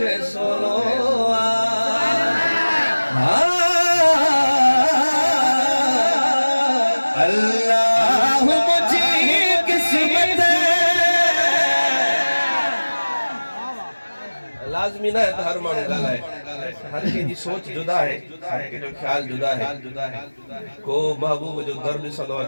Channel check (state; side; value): inverted; both; correlation -1.00